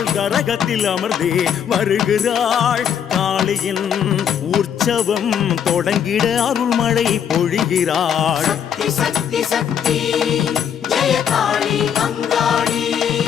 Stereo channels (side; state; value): right; quieter; 8.5 dB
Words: கரகத்தில் அமர்ந்தே வருகிறாள். காளியின் உற்சவம் தொடங்கிட அருள்மழை பொழிகிறாள். சக்தி சக்தி சக்தி ஜெய காளி அங்காளி